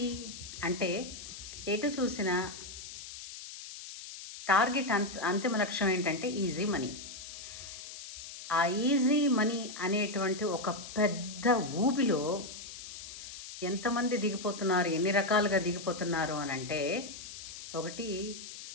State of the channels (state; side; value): noise; left; hiss, 12 dB below the sound